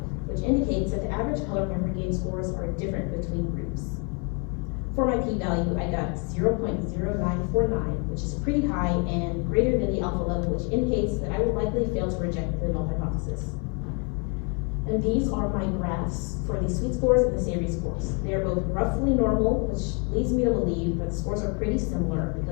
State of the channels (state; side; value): quieter; right; 35.7 dB